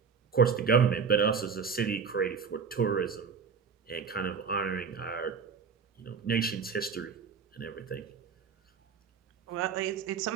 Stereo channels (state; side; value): quieter; left; 6.0 dB